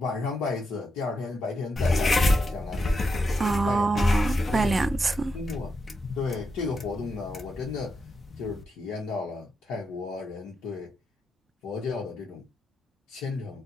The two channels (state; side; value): normal; both; correlation 0.84